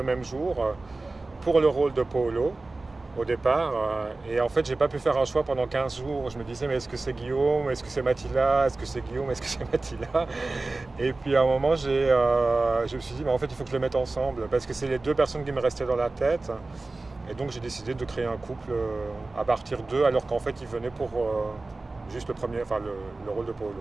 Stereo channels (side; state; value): left; quieter; 3.3 dB